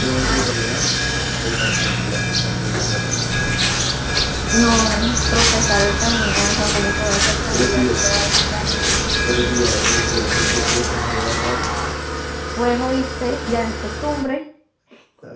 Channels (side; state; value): both; identical; correlation 1.00